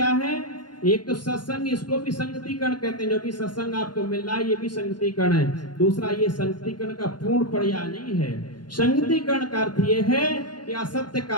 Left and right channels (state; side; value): late; right; 0.71 ms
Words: है? एक तो सत्संग, इसको भी संगतिकरण कहते हैं, जो भी सत्संग आपको मिल रहा है ये भी संगतिकरण है। दूसरा, ये संगतिकरण का पूर्ण पर्याय नहीं है। संगतिकरण का अर्थ ये है कि असत्य